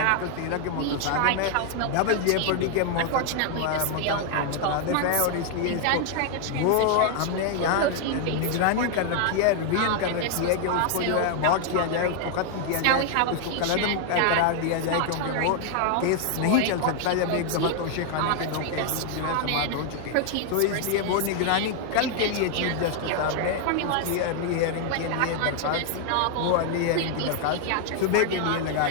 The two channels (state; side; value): different; both; correlation 0.00